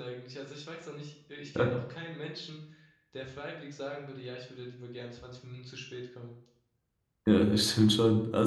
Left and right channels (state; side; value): identical; both; correlation 1.00